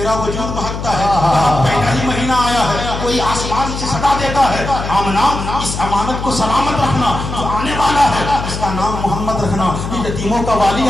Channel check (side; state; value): left; noise; hum, 6 dB below the sound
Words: وجود بہکتا ہے. پہلا ہی مہینہ آیا ہے کوئی آسمان سے صدا دیتا ہے آمنہ اس امانت کو سلامت رکھنا جو آنے والا ہے اس کا نام محمد رکھنا. یہ یتیموں کا والی